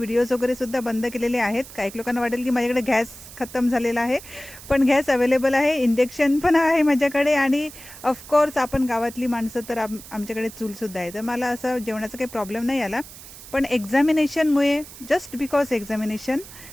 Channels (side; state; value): right; noise; hiss, 16 dB below the sound